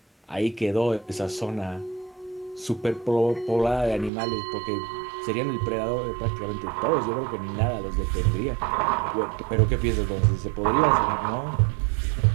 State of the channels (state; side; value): drops out; left; at 4.1 s